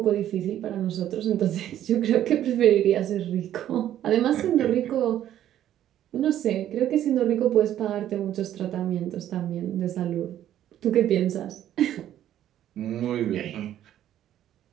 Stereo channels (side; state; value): left; quieter; 11.7 dB